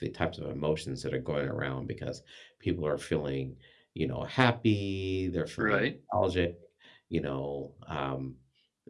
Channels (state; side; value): identical; both; correlation 1.00